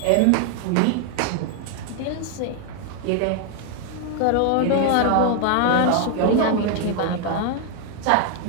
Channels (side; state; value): both; different; correlation 0.00